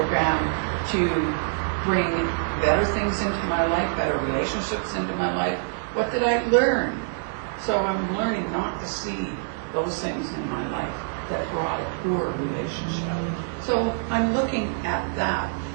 to bring better things into my life, better relationships into my life. What did I learn? So I'm learning not to see those things in my life that brought a poor relationship. So I'm looking at that.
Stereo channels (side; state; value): left; silent; 61 dB below the other